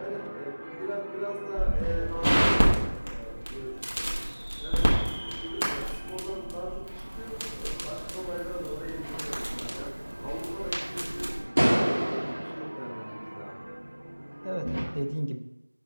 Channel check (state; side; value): inverted; both; correlation -1.00